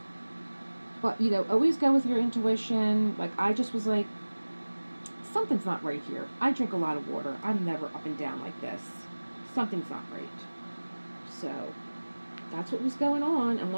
But, you know, always go with your intuition. Like, I just was like, something's not right here. I drink a lot of water. I'm never up and down like this. Something's not right. So, that's what was going on. And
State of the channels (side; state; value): both; inverted; correlation -1.00